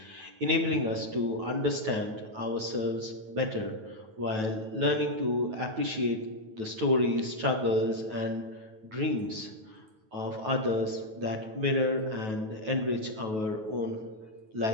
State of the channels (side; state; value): left; late; 9.2 ms